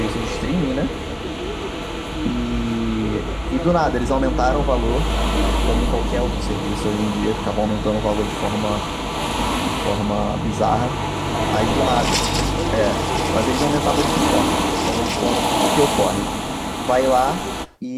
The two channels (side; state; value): both; identical; correlation 1.00